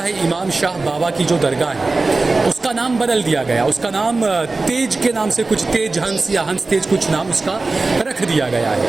है, इमाम शाह बाबा की जो दरगाह है, उसका नाम बदल दिया गया। उसका नाम तेज के नाम से कुछ तेज हंस या हंस तेज कुछ नाम उसका रख दिया गया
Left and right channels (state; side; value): quieter; left; 3.5 dB